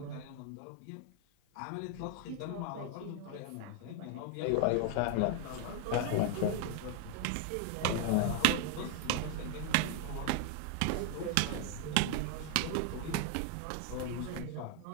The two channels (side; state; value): both; different; correlation 0.00